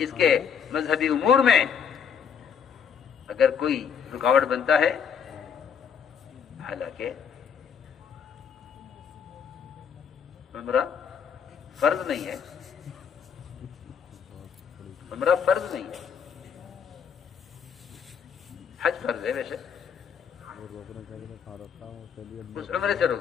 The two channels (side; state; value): right; quieter; 7.3 dB